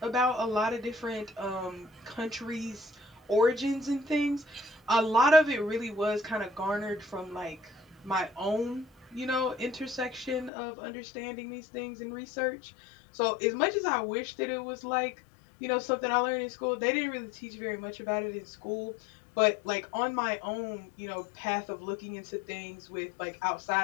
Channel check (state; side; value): drops out; right; at 10.5 s